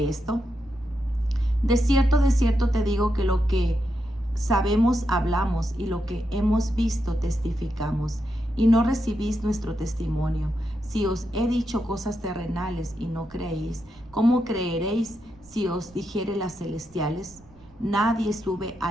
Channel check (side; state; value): right; noise; rumble, 27 dB below the sound